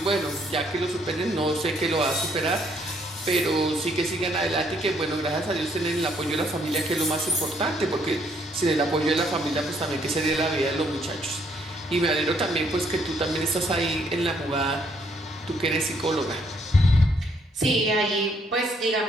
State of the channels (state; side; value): normal; both; correlation 0.69